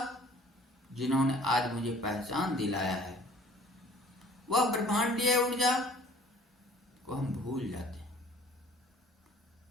जिन्होंने आज मुझे पहचान दिलाया है, वह ब्रह्मांडीय ऊर्जा को हम भूल जाते हैं।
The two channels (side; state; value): both; normal; correlation 0.52